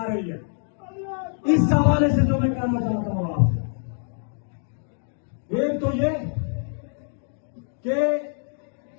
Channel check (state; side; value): silent; right; digital silence